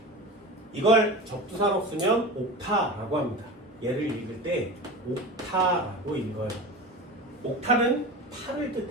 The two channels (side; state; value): both; normal; correlation 0.30